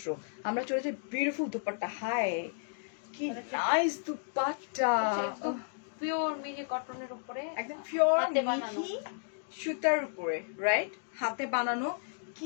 আমরা চলে যাই বিউটিফুল দুপাট্টা। হাই, কি নাইস দুপাট্টা, পিওর মিহি কটনের উপরে, একদম পিওর হাতে বানানো। মিহি সুতার উপরে, রাইট, হাতে বানানো।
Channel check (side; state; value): right; silent; digital silence